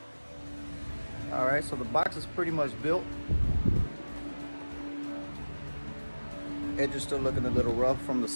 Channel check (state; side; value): inverted; both; correlation -1.00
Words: All right, so the box is pretty much built. Edge is still looking a little rough from the